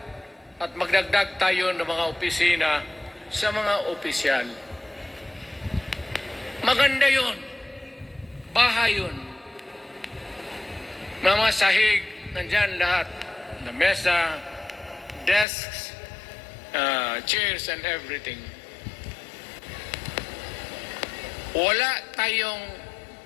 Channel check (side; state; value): right; drops out; at 15.5 s